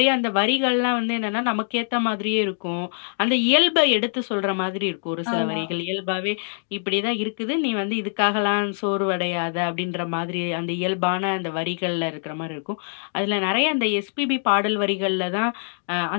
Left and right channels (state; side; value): silent; right; digital silence